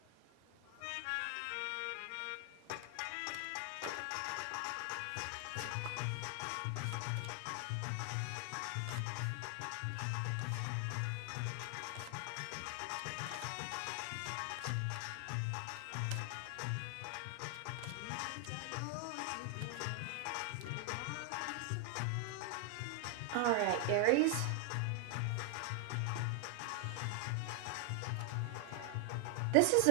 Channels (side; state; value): both; different; correlation 0.00